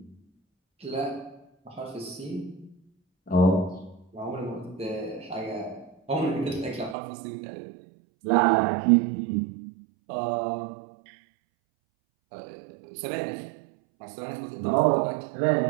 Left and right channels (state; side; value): drops out; left; at 7.0 s